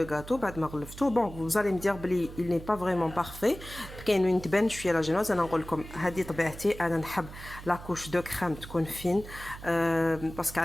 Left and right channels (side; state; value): right; noise; hum, 14 dB below the sound